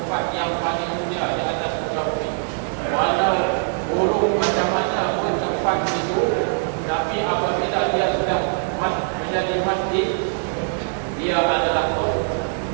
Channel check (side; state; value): left; silent; 64 dB below the other